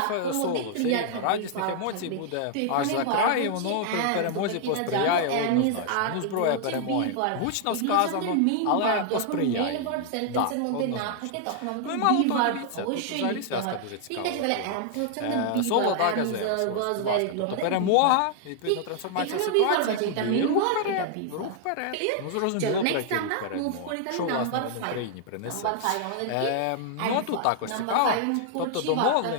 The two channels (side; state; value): both; different; correlation 0.00